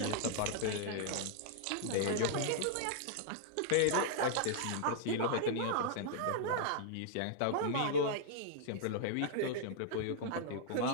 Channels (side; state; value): both; different; correlation -0.01